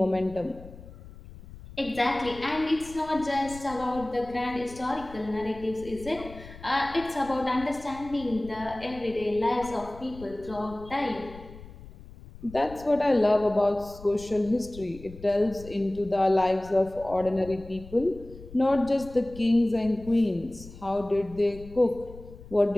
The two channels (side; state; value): left; noise; rumble, 17 dB below the sound